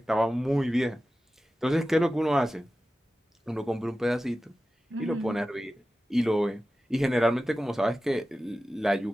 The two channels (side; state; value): both; normal; correlation 0.94